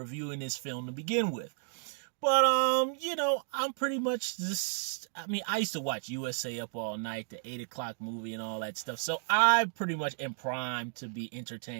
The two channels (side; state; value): left; silent; digital silence